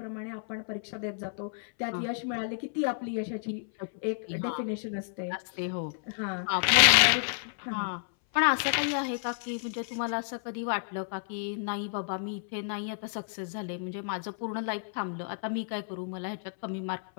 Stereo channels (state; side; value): silent; right; 57 dB below the other